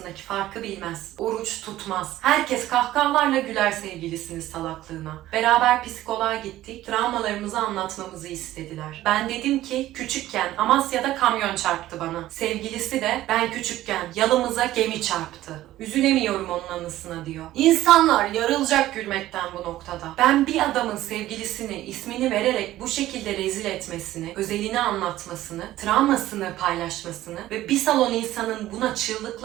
farkı bilmez. Oruç tutmaz. Herkes kahkahalarla güler sevgilisinin salaklığına. Beraber psikoloğa gittik. Travmalarımızı anlatmamızı istediler. Ben dedim ki küçükken Amasya'da kamyon çarptı bana. Sevgilisi de ben küçükken yalımıza gemi çarptı. Üzülemiyorum onun anısına diyor. İnsanlar yarılacak gülmekten bu noktada. Ben bir adamın sevgilisini ismini vererek bu şekilde rezil etmesini, özelini anlatmasını, travmasını paylaşmasını ve bir salon insanın buna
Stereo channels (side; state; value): left; quieter; 14.8 dB